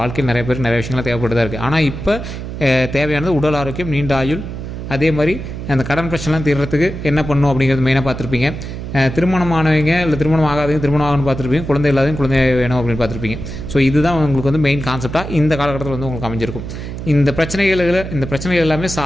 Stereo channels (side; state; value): right; noise; hum, 8 dB below the sound